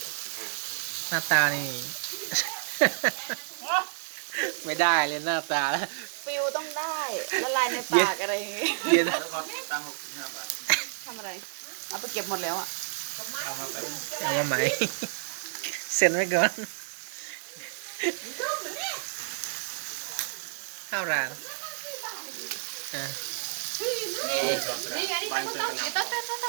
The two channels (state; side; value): silent; left; digital silence